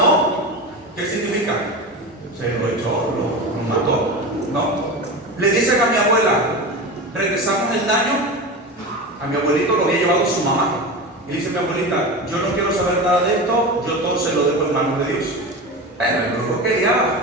¿qué significa? Se lo echó, lo mató. No. Le dicen a mi abuela, regresamos el daño. A mi abuelito lo había llevado su mamá. Y dice mi abuelita, yo no quiero saber nada de esto, yo todo se lo dejo en manos de Dios. Bueno, el brujo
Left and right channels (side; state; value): both; normal; correlation 0.26